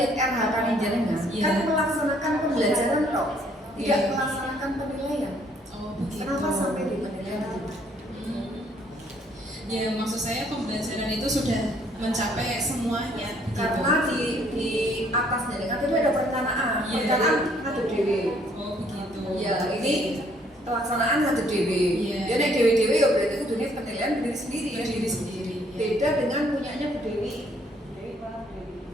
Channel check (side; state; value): both; normal; correlation 0.64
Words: RHK jenengan kan melaksanakan pembelajaran toh, tidak melaksanakan penilaian. Oh begitu. Kenapa sampai di penilaian? Ya maksud saya pembelajaran itu sudah mencapai semuanya. Karena di atas jenengan itu ada perencanaan. Perencanaan ada dewe. Oh begitu. Ya ini pelaksanaan ada dewe. Ya nek dewe ya berarti kudunya penilaian diri sendiri ya. Diri sendiri. Beda dengan punyanya Bu Dewi.